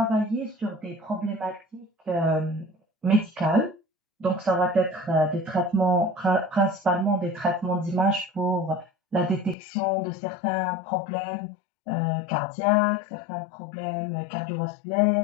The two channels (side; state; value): right; drops out; at 9.6 s